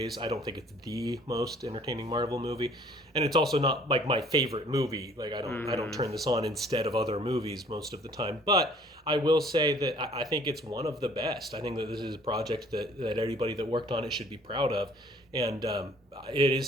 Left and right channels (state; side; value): normal; both; correlation 0.56